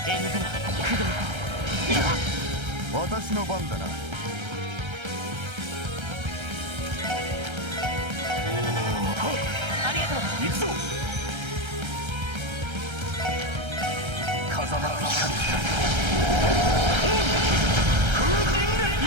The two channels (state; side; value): late; left; 1.3 ms